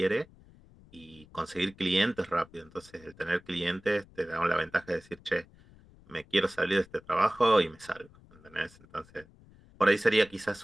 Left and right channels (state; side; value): noise; left; rumble, 25 dB below the sound